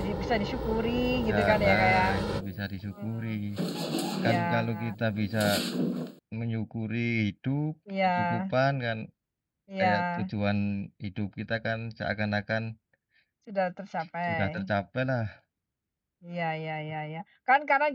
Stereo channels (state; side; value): identical; both; correlation 1.00